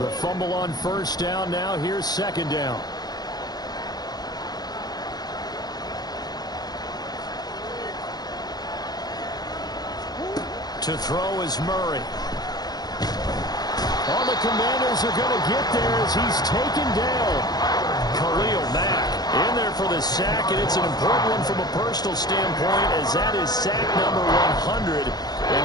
fumble on first down now. Here's second down. To throw is Murray. All the Commanders are going to get there as he's taken down. Khalil Mack in there for the sack, and it's an important one from a personal standpoint, as that is sack number 100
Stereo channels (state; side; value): late; right; 0.19 ms